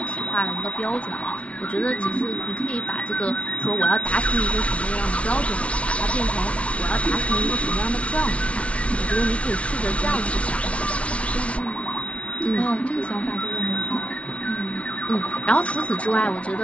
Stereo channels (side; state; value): right; late; 0.063 ms